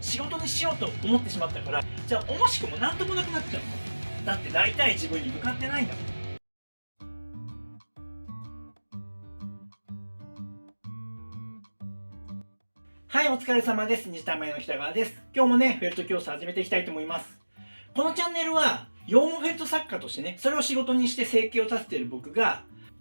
事にしようと思ってしまったから、じゃあ惜しくも何ともなくなっちゃうの。だってなりたい自分に向かってないんだもん。はい、お疲れ様です。西田前の北川です。今日もね、フェルト教室始めていきたいと思います。このチャンネルは、羊毛フェルト作家としてね、それを仕事にして生計を立てている僕が、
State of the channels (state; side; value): inverted; both; correlation -1.00